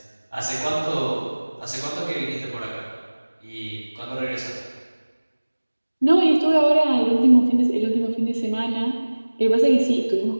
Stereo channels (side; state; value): both; inverted; correlation -1.00